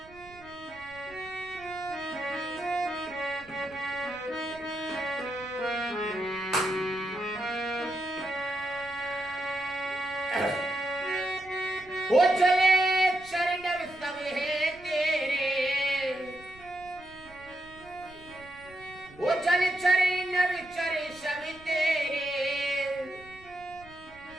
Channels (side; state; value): right; noise; rumble, 22 dB below the sound